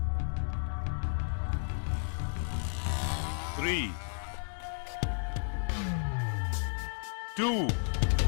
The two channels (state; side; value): silent; right; digital silence